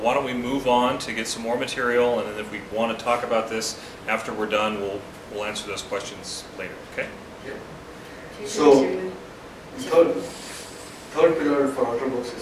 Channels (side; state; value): both; identical; correlation 1.00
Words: don't we move on to get some more material, and then if we want to talk about this after we're done, we'll answer those questions later, okay? So, third pillar for Ultrabooks is